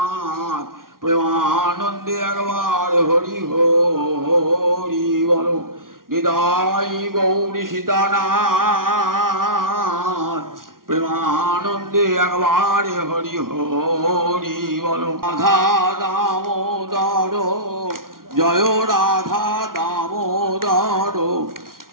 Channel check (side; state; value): left; late; 0.92 ms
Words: প্রেমানন্দে একবার হরি হরি বলো। নিতাই গৌরী সীতানাথ প্রেমানন্দে একবার হরি হরি বলো। রাধা দামোদর জয় রাধা দামোদর